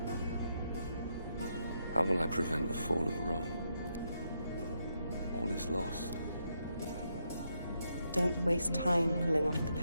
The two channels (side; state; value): both; inverted; correlation -0.80